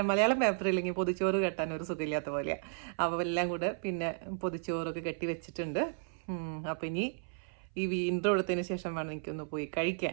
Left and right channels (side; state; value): left; silent; 55 dB below the other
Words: മലയാളം പേപ്പർ ഇല്ലെങ്കിൽ പൊതിച്ചോറ് കെട്ടാൻ ഒരു സുഖമില്ലാത്ത പോലെയാണ്. അപ്പോൾ എല്ലാം കൂടെ പിന്നെ പൊതിച്ചോറൊക്കെ കെട്ടി വെച്ചിട്ടുണ്ട്. അപ്പോൾ ഇനി ഈ ഇൻട്രോ എടുത്തതിന് ശേഷം വേണം എനിക്കൊന്ന് പോയി